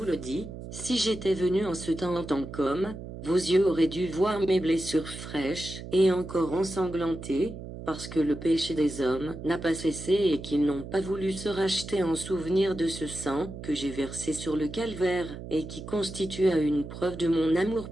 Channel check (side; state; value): right; noise; hum, 11 dB below the sound